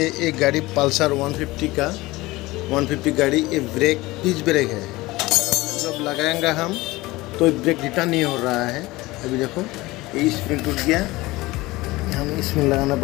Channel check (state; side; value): quieter; right; 20.1 dB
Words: एक गाड़ी पल्सर 150 का 150 गाड़ी, ये ब्रेक पिच ब्रेक है। जब लगाएंगे हम तो ब्रेक रिटर्न नहीं हो रहा है। अभी देखो ये स्प्रिंग टूट गया, हम इसमें लगाना